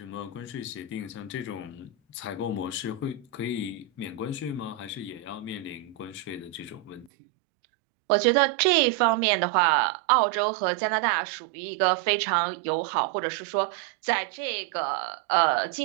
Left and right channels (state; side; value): drops out; left; at 7.1 s